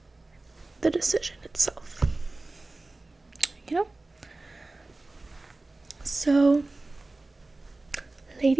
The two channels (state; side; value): quieter; left; 3.1 dB